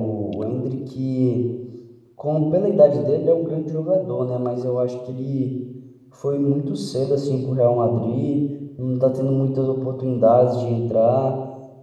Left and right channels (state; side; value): identical; both; correlation 1.00